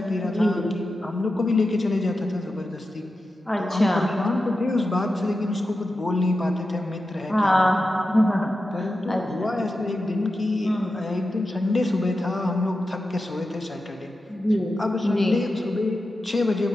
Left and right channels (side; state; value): both; normal; correlation 0.91